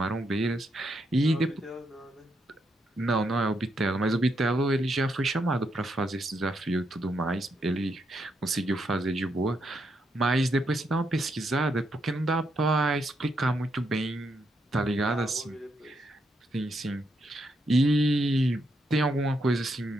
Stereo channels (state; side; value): normal; both; correlation 0.79